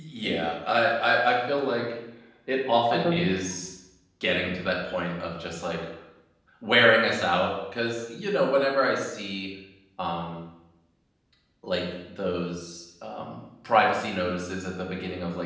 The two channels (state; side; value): identical; both; correlation 1.00